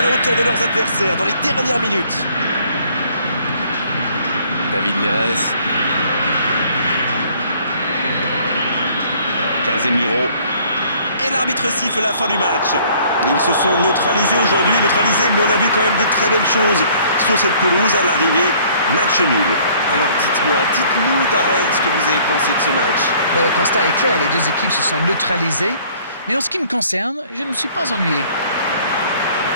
la hauteur de leurs adversaires dans les dernières minutes. David Neres. Casemiro. Et l'arbitre siffle la fin du match. Ils se sont neutralisés aujourd'hui, mais on a vu quand même de très belles choses sur cette pelouse à l'arrivée. Match nul. Alors dites-nous Darren ce que vous avez pensé de ce match. Ben, le constat est clair, les deux équipes se sont neutralisées. Mais en ce qui me concerne, je ne me suis pas ennuyé.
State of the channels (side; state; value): both; inverted; correlation -0.58